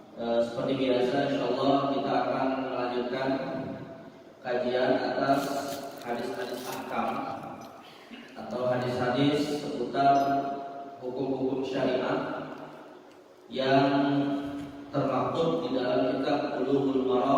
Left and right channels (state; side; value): identical; both; correlation 1.00